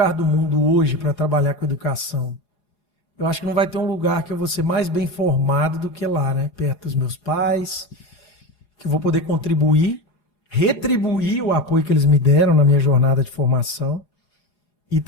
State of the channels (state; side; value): late; right; 4.9 ms